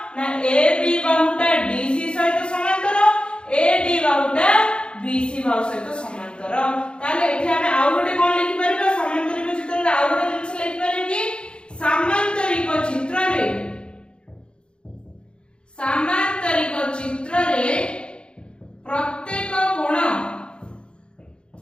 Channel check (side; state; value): right; late; 0.055 ms